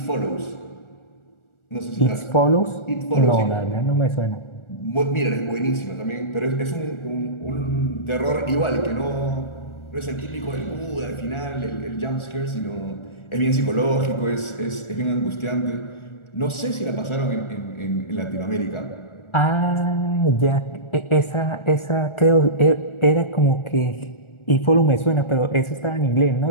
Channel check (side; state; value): right; late; 1.4 ms